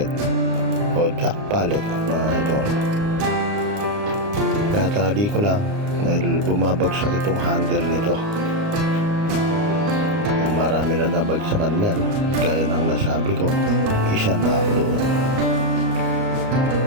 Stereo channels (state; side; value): late; left; 29 ms